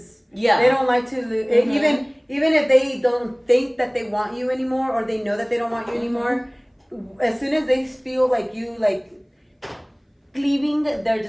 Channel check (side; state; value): both; identical; correlation 1.00